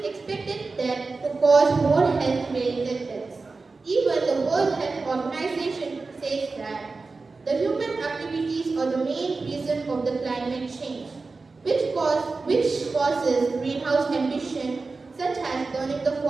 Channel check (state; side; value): quieter; left; 4.0 dB